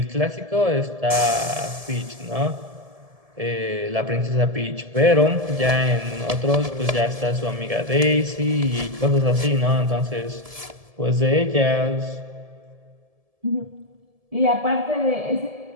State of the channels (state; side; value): late; left; 1.7 ms